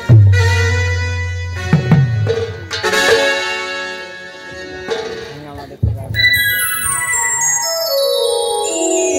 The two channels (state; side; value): identical; both; correlation 1.00